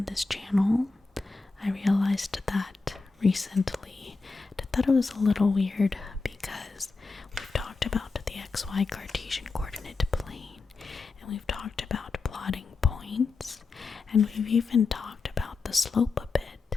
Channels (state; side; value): quieter; right; 4.1 dB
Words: this channel. I realized that recently. I thought it was a little weird because we've talked about the xy Cartesian coordinate plane, and we've talked about plotting points, and we've even talked about the slope a bit,